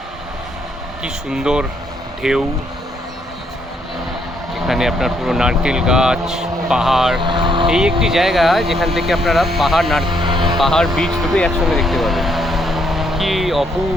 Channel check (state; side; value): normal; both; correlation 0.72